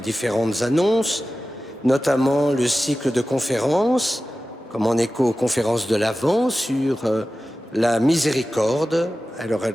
annonces, notamment le cycle de conférences, comme en écho aux conférences de l'Avent sur la miséricorde. Alors,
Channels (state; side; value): normal; both; correlation 0.94